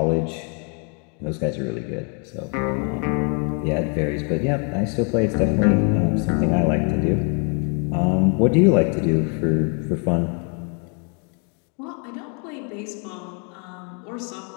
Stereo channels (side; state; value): right; quieter; 38.3 dB